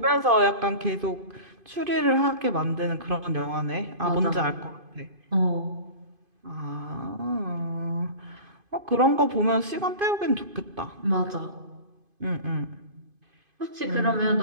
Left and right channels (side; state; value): left; late; 2.5 ms